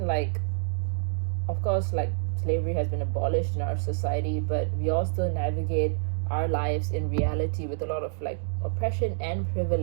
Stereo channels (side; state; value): left; silent; digital silence